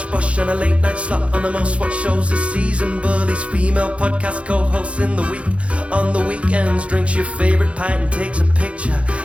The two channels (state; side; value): late; left; 0.062 ms